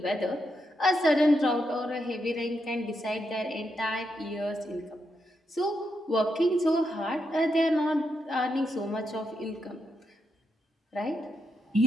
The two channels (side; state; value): both; normal; correlation 0.82